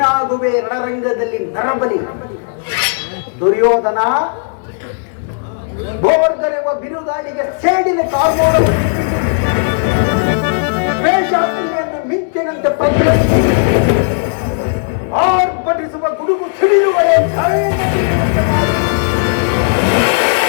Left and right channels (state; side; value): silent; right; digital silence